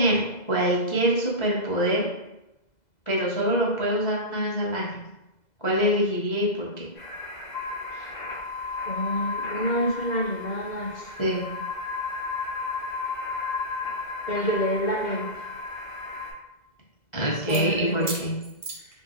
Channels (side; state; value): right; late; 2.0 ms